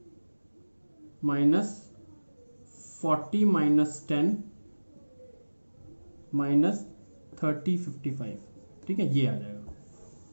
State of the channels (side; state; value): both; inverted; correlation -1.00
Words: -40 -10 -30 55, ठीक है, ये आ जाएगा।